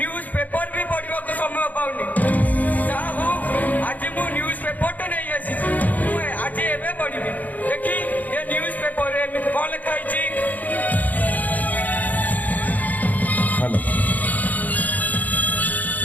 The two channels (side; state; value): right; late; 0.079 ms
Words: पेपर भी पढ़ा को समय पाऊनी आज मु न्यूज पेपर तो नहीं आसी आज एवं पढ़ी देखी ये न्यूज पेपर कौन लिखाई।